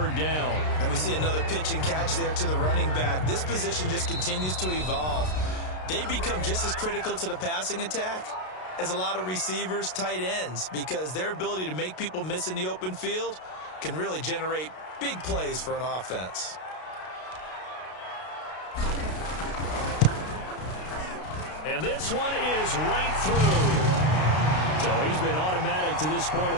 down. And we see another pitch and catch there to the running back. This position just continues to evolve. They become just as critical to the passing attack as a lot of receivers, tight ends, because their ability to make people miss in the open field can really generate big plays for an offense. And this one is right through. So he's been automatic to this point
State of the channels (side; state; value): right; late; 32 ms